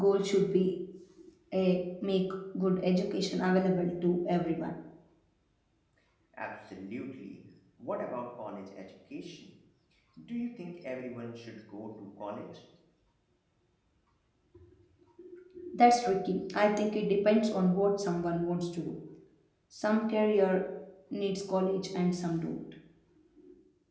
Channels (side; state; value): both; identical; correlation 1.00